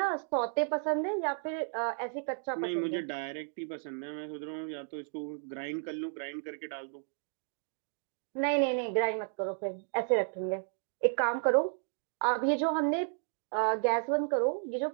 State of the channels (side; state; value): left; silent; 56 dB below the other